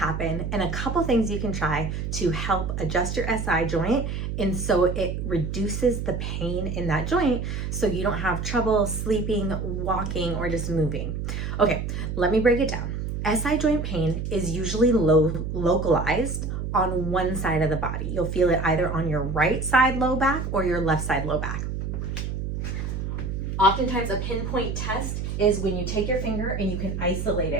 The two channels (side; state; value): right; noise; hum, 3 dB below the sound